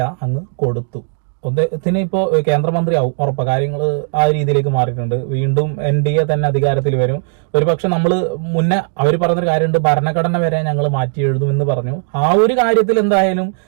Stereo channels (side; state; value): left; silent; digital silence